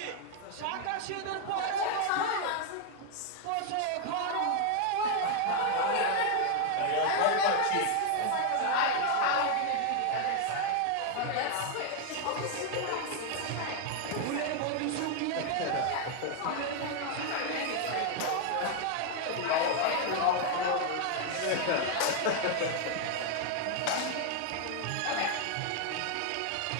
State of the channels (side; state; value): both; different; correlation 0.00